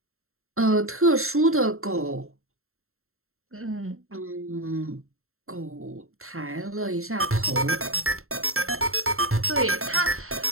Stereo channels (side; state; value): left; late; 0.62 ms